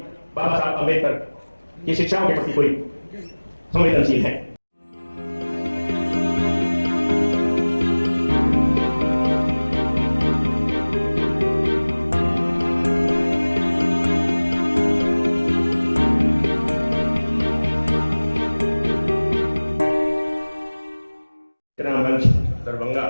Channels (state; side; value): inverted; both; correlation -1.00